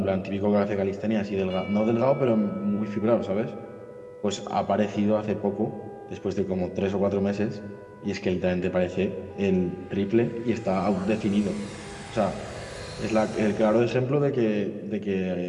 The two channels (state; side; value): identical; both; correlation 1.00